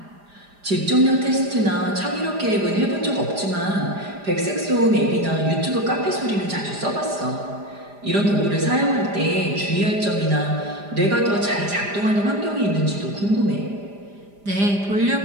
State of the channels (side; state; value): left; late; 5.0 ms